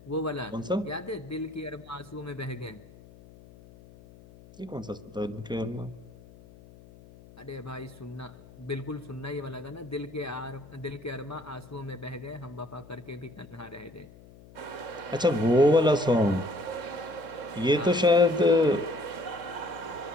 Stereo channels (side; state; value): left; noise; hum, 21 dB below the sound